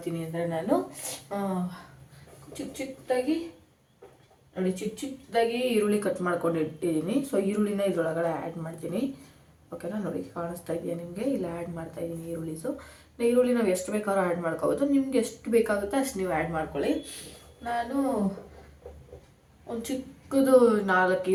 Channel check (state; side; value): identical; both; correlation 1.00